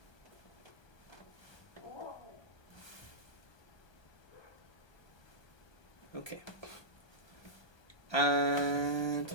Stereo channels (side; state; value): right; late; 1.2 ms